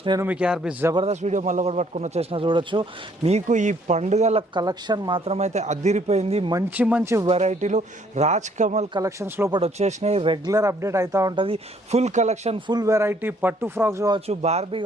నేను మీకు ఆర్బీ జబర్దస్త్ వీడియో మళ్ళీ ఒకటి పట్టుకుని వచ్చేసిన. చూడొచ్చు, మీకు ఈ పండుగల కలెక్షన్ మాత్రమైతే అదిరిపోయింది. మంచి మంచి వెరైటీలు రాజ్ కమల్ కలెక్షన్స్ లోపల వచ్చేసినాయి. రెగ్యులర్ అప్డేట్ అవుతూ ఉంటుంది. ఫుల్ కలెక్షన్, ఫుల్ వెరైటీ, పట్టు ఫ్రాక్స్ కావచ్చు, బార్బీ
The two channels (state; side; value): normal; both; correlation 0.64